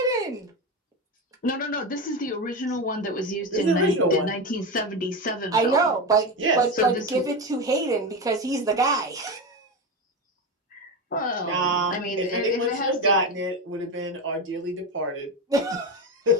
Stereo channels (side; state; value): both; normal; correlation 0.18